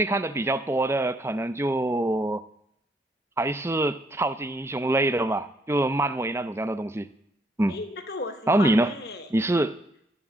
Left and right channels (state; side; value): normal; both; correlation 0.69